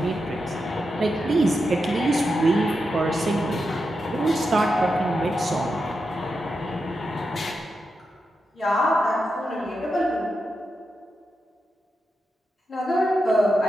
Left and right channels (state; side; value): normal; both; correlation 0.87